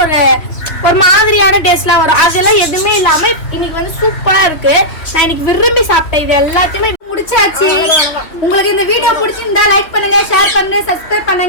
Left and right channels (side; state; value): right; late; 2.9 ms